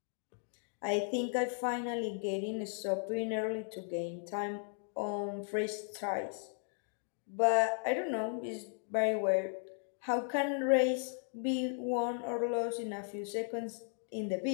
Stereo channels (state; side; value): silent; right; 54 dB below the other